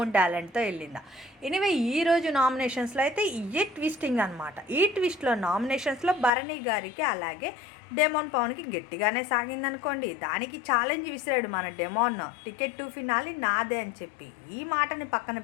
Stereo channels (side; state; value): right; drops out; at 6.3 s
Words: టాలెంట్తో వెళ్ళిందా? ఎనీవే ఈరోజు నామినేషన్స్లో అయితే ఇయే ట్విస్టింగ్ అనమాట. ఈ ట్విస్ట్లో నామినేషన్స్లో భరణి గారికి అలాగే డెమోన్ పవన్కి గట్టిగానే సాగిందనుకోండి. దానికి ఛాలెంజ్ విసిరాడు మన డెమోన్, టికెట్ టు ఫినాలి నాదే అని చెప్పి. ఈ మాటని పక్కన